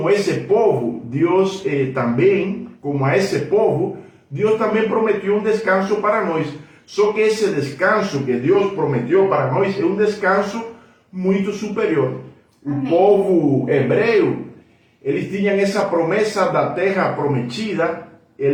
esse povo, Deus também, como a esse povo, Deus também prometeu um descanso para nós. Só que esse descanso que Deus prometeu para nós é um descanso muito superior. O povo hebreu, eles tinham essa promessa da terra prometida,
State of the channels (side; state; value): both; identical; correlation 1.00